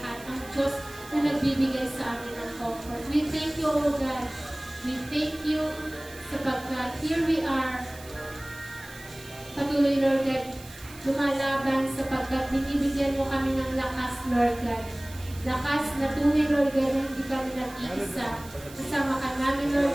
ang Diyos na nagbibigay sa amin ng comfort. We thank you, O God. We thank you sapagkat here we are. Patuloy, Lord God, lumalaban sapagkat binibigyan mo kami ng lakas, Lord God. Lakas na tunay, Lord God, na hindi kami nag-iisa. Kasama ka namin, Lord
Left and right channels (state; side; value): noise; right; hiss, 18 dB below the sound